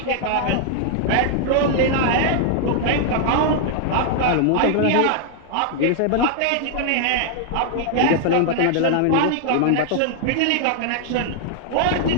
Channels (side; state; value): both; different; correlation -0.01